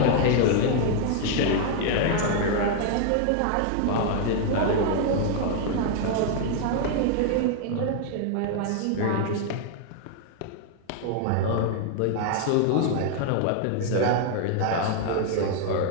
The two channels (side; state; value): both; different; correlation 0.00